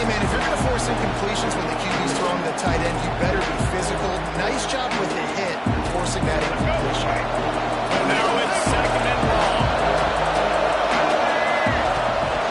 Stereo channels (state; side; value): identical; both; correlation 1.00